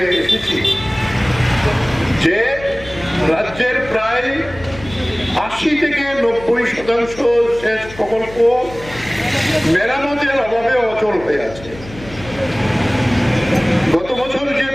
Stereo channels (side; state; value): left; noise; hum, 17 dB below the sound